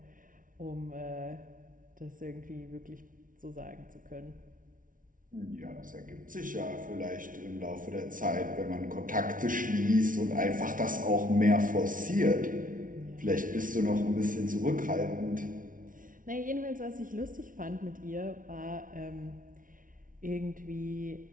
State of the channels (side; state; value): left; late; 0.39 ms